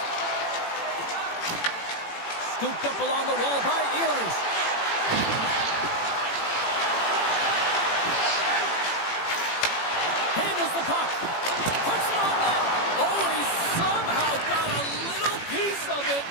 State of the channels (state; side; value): late; right; 18 ms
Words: Scooped up along the wall by Ehlers. Handles the puck. Puts it on net. Oh, he somehow got a little piece of it,